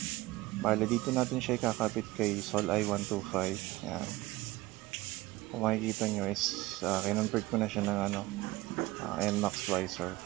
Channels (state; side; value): quieter; left; 19.6 dB